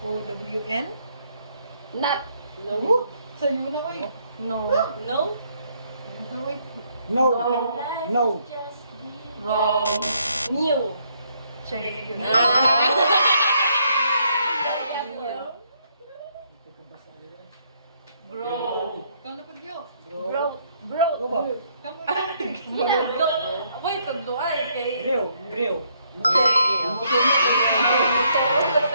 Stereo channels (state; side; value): inverted; both; correlation -0.71